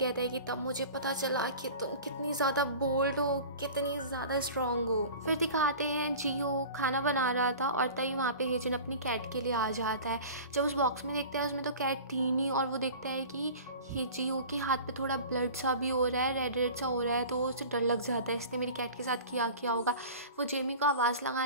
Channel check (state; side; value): inverted; both; correlation -0.39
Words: है कि तब मुझे पता चला कि तुम कितनी ज़्यादा बोल्ड हो, कितनी ज़्यादा स्ट्रॉन्ग हो। फिर दिखाते हैं जीहो खाना बना रहा था और तभी वहाँ पे हेजिन अपनी कैट के लिए आ जाता है। जब उस बॉक्स में देखता है उसमें तो कैट थी नहीं, और वो देखता है कि जीहो के हाथ पे थोड़ा ब्लड सा भी हो रहा है, रेड रेड सा हो रहा है, तो उसे डर लग जाता है इसने मेरी कैट के साथ किया होगा। वो जेमी को आवाज़